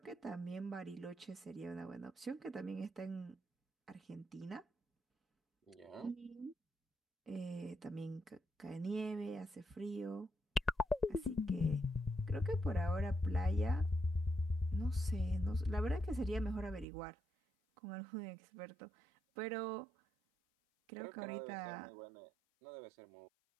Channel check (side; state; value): left; drops out; at 16.9 s